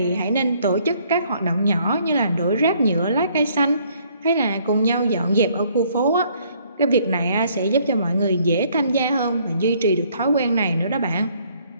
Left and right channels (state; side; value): inverted; both; correlation -0.64